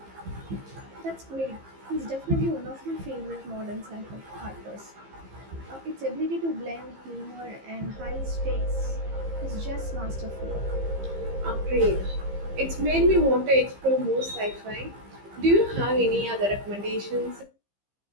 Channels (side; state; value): left; late; 15 ms